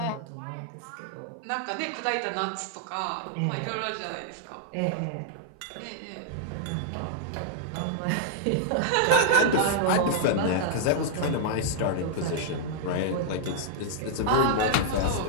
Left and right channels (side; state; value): both; different; correlation -0.01